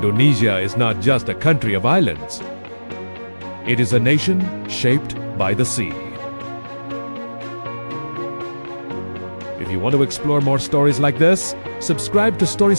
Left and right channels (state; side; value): inverted; both; correlation -1.00